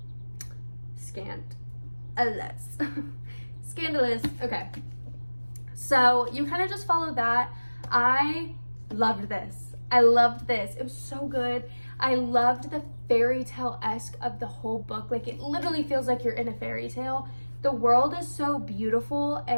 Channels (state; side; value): inverted; both; correlation -1.00